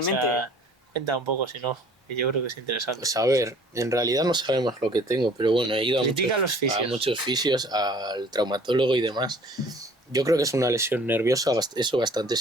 O sea, cuenta un poco, si no, que yo creo que es interesante. Pues a ver, en realidad no sabemos lo que tengo, pero bueno, he ido Critica a los fisios. a muchos fisios, al traumatólogo y demás. Yo creo que es una lesión nerviosa, eso bastante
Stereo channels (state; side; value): normal; both; correlation 0.52